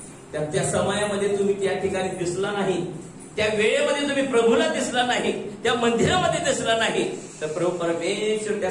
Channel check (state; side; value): identical; both; correlation 1.00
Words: त्या समयामध्ये तुम्ही त्या ठिकाणी दिसला नाही, त्या वेळेमध्ये तुम्ही प्रभूला दिसला नाही, त्या मंदिरामध्ये दिसला नाही, तर प्रभू परमेश्वर त्या